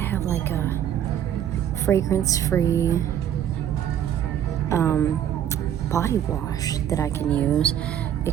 like a fragrance-free body wash that I can use,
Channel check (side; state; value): left; quieter; 10.1 dB